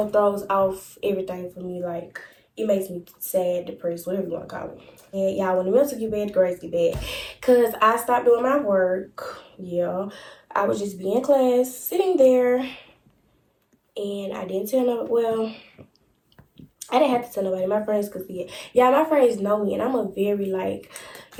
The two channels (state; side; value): identical; both; correlation 1.00